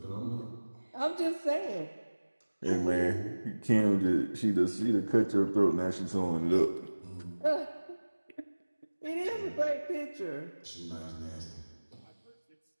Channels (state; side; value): inverted; both; correlation -1.00